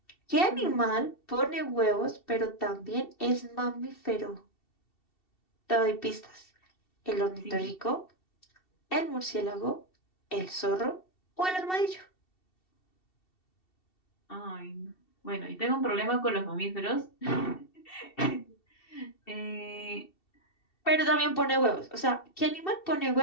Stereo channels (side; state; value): right; late; 2.7 ms